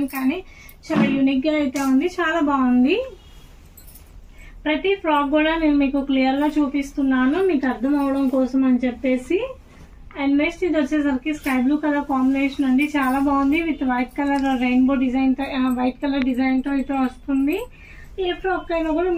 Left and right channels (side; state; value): both; identical; correlation 1.00